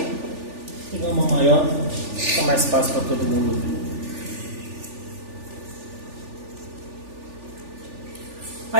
pegar uma maior, fica mais fácil para todo mundo ver.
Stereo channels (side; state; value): left; late; 3.4 ms